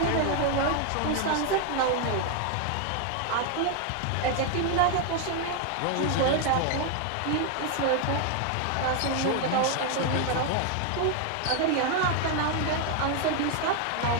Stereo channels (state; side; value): different; both; correlation 0.00